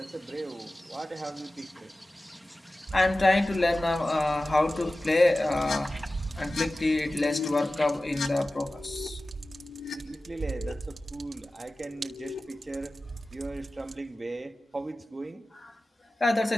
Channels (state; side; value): normal; both; correlation 0.96